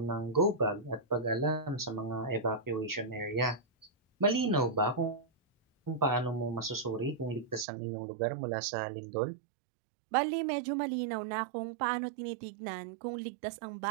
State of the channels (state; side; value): drops out; left; at 7.7 s